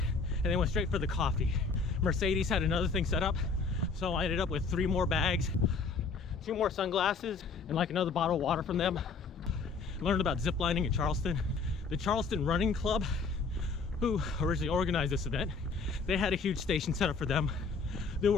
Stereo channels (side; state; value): right; quieter; 4.6 dB